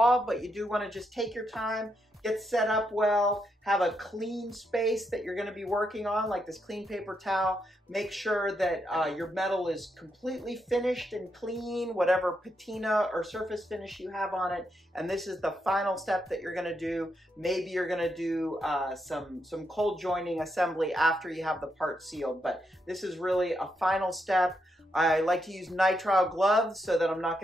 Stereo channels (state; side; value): normal; both; correlation 0.81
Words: but you do wanna just take your time, get set up well, have a clean space that you're gonna be working on, like this clean paper towel. Make sure that your metal is completely finished and clean, whatever patina or surface finish you have on it. And this is the final step that you're gonna do. Maybe you're gonna do some cold joining assembly after you have the part sealed, but this is really a final step. I like to use nitrile gloves so that I'm not